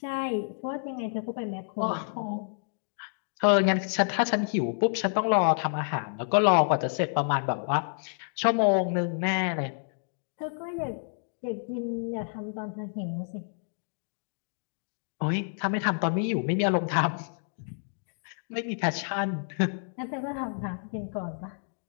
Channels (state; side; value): silent; right; digital silence